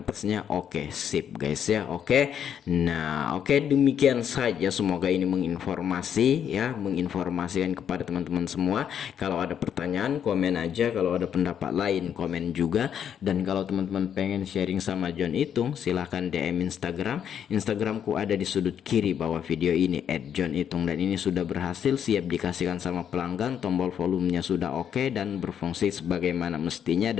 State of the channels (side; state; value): right; quieter; 8.8 dB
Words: oke, sip guys ya. Oke. Nah, oke, demikian saja, semoga ini menginformasikan kepada teman-teman semua. Kalau ada pertanyaan komen aja, kalau ada pendapat lain komen juga, dan kalau teman-teman pengen sharing sama John Itung silahkan DM Instagramku ada di sudut kiri bawah video ini @johnitung, dan ini sudah berhasil, siap dikasihkan sama pelanggan. Tombol volumenya sudah oke dan berfungsi sebagaimana mestinya,